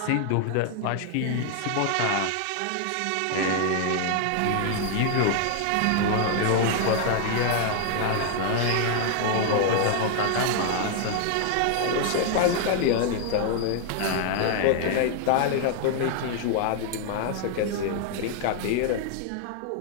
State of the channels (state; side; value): different; both; correlation 0.00